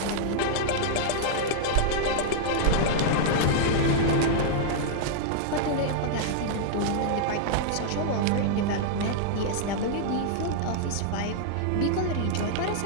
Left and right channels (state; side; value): different; both; correlation -0.01